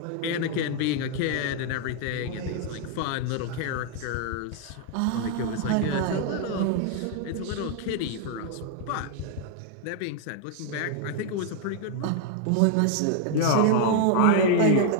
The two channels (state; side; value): different; both; correlation 0.00